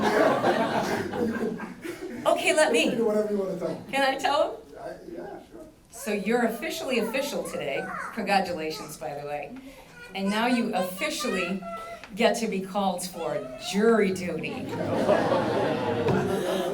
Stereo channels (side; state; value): both; identical; correlation 1.00